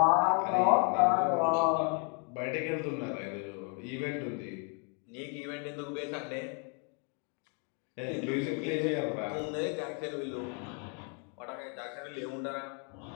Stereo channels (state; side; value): quieter; right; 38.2 dB